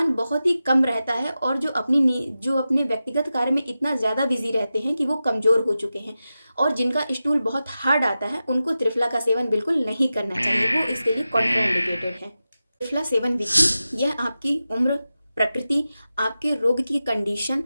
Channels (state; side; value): inverted; both; correlation -0.93